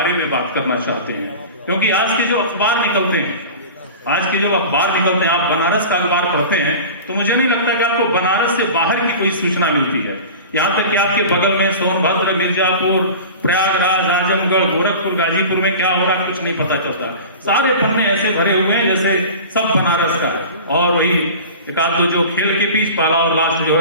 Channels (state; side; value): inverted; both; correlation -0.36